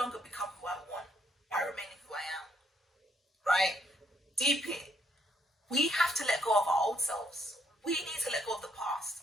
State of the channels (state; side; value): normal; both; correlation 0.71